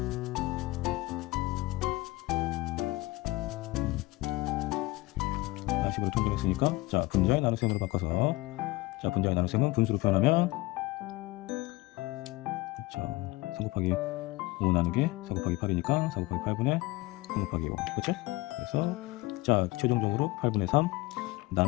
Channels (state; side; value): quieter; right; 20.5 dB